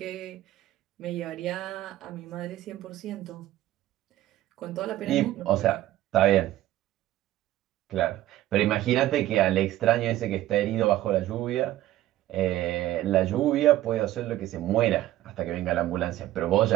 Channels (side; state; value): left; quieter; 14.6 dB